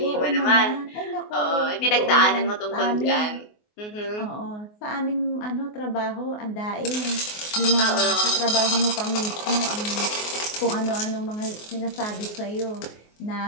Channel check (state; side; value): late; right; 24 ms